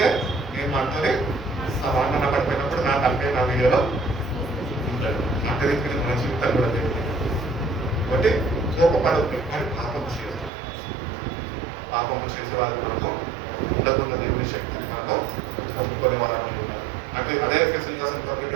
నేను మాట్లాడి సమాధాన పడిపోయినప్పుడు నా తలకాయ నా వీడియోలో ఉంటాడు. అంటే మన జీవితాలు కూడా జరిగింది. కాబట్టి కోపపడద్దు కానీ పాపము చేసే వాళ్ళు మనము ఉండకుండా దేవుని శక్తిని మనము పొందుకునే వాళ్ళని ఉన్నారు. అంటే అదే ఎఫెసీయులకు రాసిన పత్రిక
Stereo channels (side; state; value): left; drops out; at 10.5 s